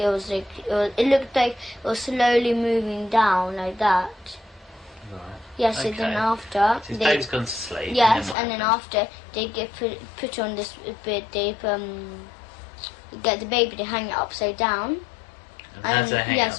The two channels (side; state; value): right; drops out; at 8.3 s